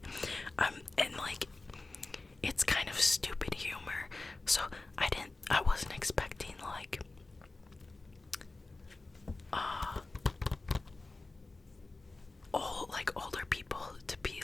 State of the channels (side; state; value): right; quieter; 3.3 dB